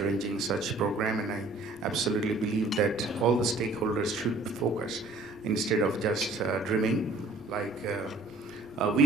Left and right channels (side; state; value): left; quieter; 3.1 dB